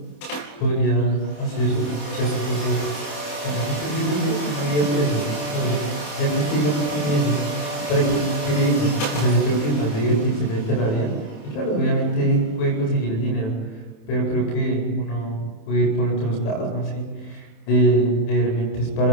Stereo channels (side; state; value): right; late; 27 ms